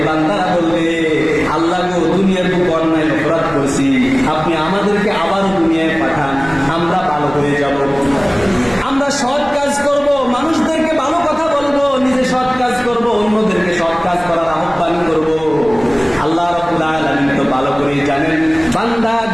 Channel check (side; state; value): right; noise; rumble, 18 dB below the sound